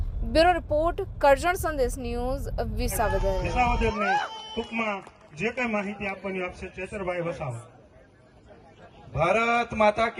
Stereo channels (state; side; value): identical; both; correlation 1.00